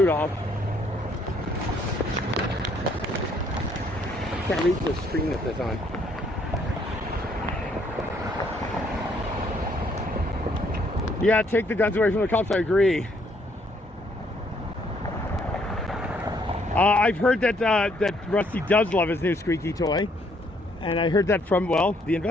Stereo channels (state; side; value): normal; both; correlation 0.67